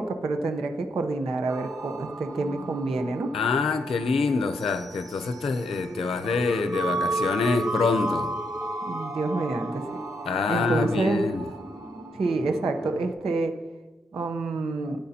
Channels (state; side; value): normal; both; correlation 0.77